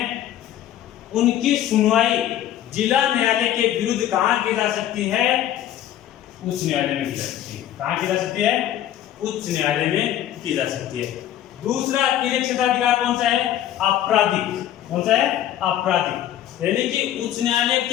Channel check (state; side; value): quieter; right; 11.8 dB